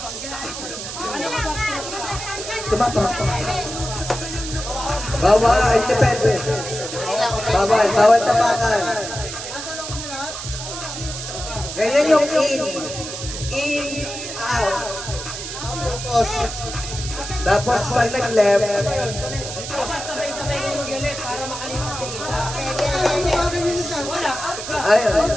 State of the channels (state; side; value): noise; right; hiss, 8 dB below the sound